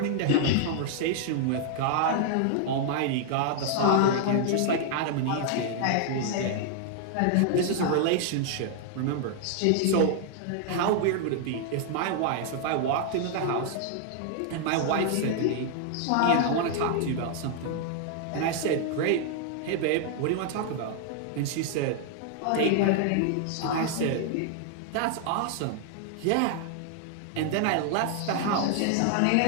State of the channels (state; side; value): different; both; correlation 0.00